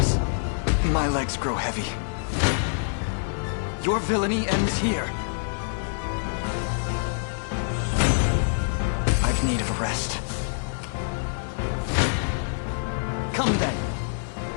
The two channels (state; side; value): silent; right; 57 dB below the other